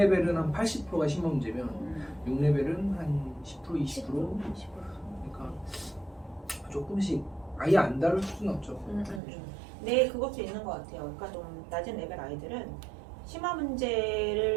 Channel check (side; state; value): left; drops out; at 9.2 s